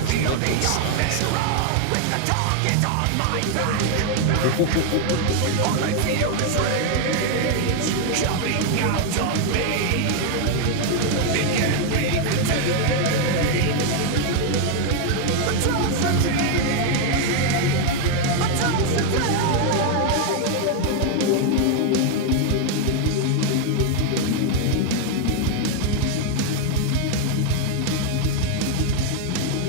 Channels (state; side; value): different; both; correlation 0.01